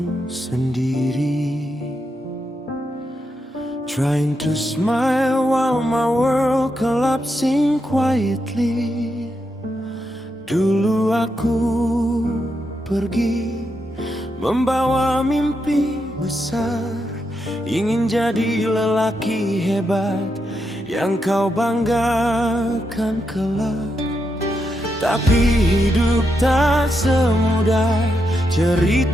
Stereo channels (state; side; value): normal; both; correlation 0.83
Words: sendiri, trying to smile while my world collapsing quietly. Dulu aku pergi membawa mimpi besar, ingin jadi lelaki hebat yang kau banggakan kelak. Tapi hidup tak semudah